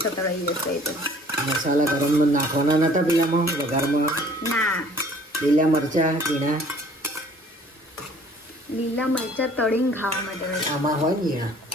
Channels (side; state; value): both; normal; correlation 0.54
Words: જશે એ તો. મસાલા ગરમમાં નાખવાના નતા પેલામાં વઘારમાં. ના, લીલા મરચાં ઝીણા લીલા મરચાં તળીને ખાવા માટે હોય. આમાં હોય ને ઝીણા.